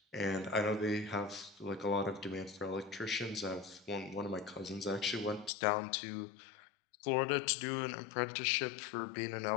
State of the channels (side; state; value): right; drops out; at 5.5 s